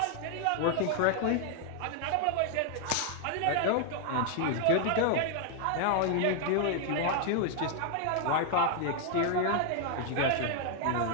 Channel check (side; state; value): both; different; correlation 0.00